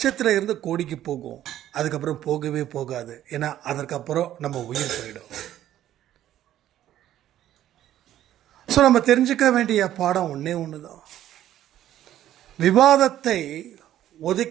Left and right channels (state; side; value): quieter; left; 12.3 dB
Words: கோடிக்கு போகும். அதுக்கப்புறம் போகவே போகாது. ஏன்னா அதற்கப்புறம் நம்ம உயிர் போயிடும். ஸோ நம்ம தெரிஞ்சுக்க வேண்டிய பாடம் ஒன்றே ஒன்று தான். விவாதத்தை